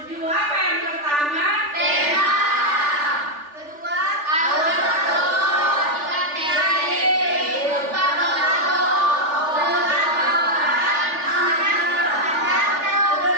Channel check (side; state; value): left; late; 3.4 ms